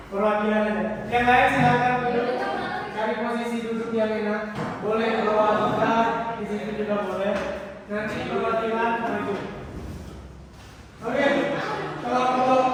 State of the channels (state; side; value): identical; both; correlation 1.00